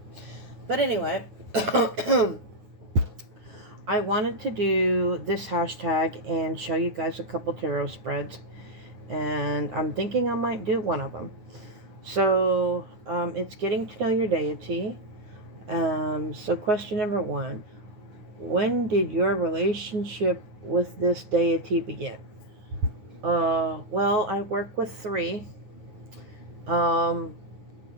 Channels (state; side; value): late; left; 9.5 ms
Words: But anyway, I wanted to do this hashtag and show you guys a couple tarot spreads. And I'm thinking I might do one of them. So, it's getting to know your deity. So question number one. When did your relationship with this deity begin? Well, I work with three. Um,